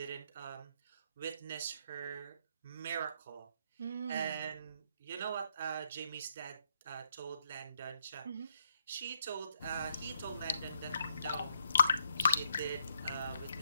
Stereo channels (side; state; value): both; inverted; correlation -0.75